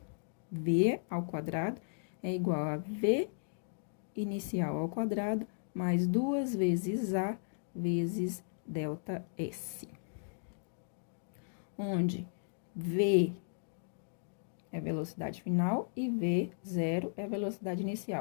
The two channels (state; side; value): silent; right; digital silence